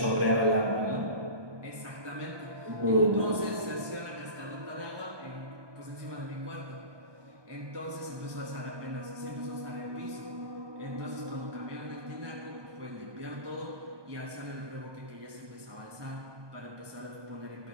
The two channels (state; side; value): late; left; 1.2 ms